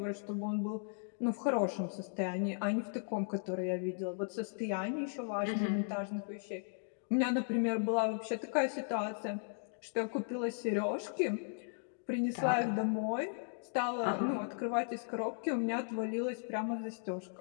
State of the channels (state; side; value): silent; right; digital silence